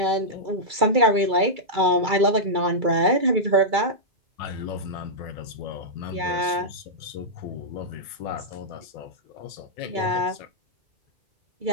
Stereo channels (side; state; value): left; late; 2.3 ms